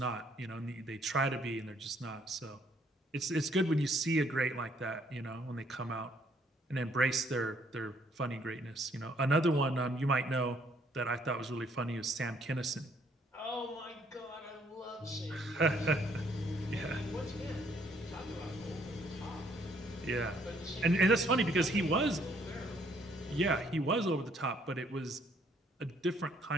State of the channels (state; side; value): normal; both; correlation 0.66